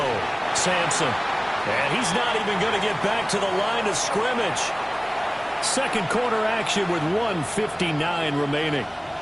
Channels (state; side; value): identical; both; correlation 1.00